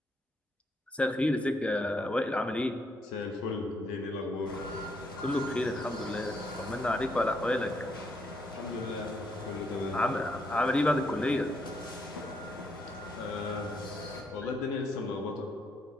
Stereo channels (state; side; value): normal; both; correlation 0.75